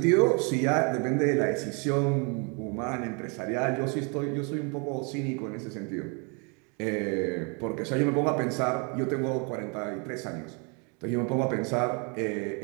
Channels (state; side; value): quieter; left; 34.4 dB